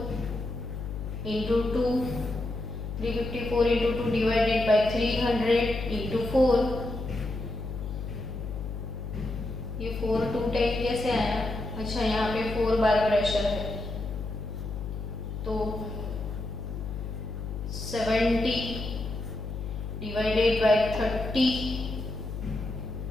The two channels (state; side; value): noise; left; hum, 6 dB below the sound